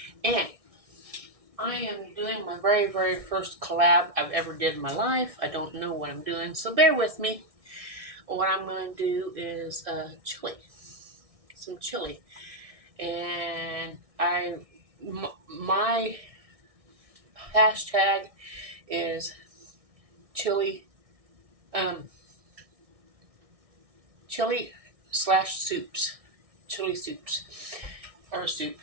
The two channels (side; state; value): left; late; 1.6 ms